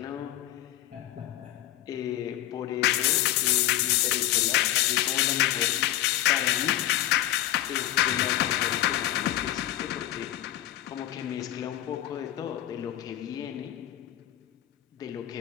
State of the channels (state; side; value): quieter; right; 14.0 dB